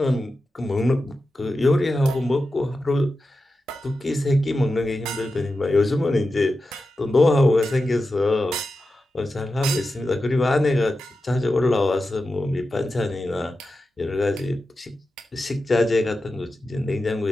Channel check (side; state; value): both; normal; correlation 0.91